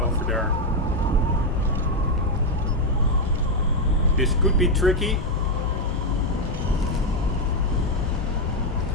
there. This could be tricky.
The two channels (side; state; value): both; normal; correlation 0.03